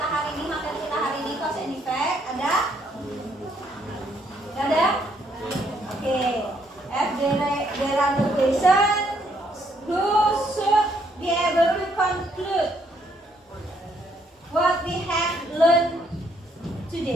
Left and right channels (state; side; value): normal; both; correlation 0.70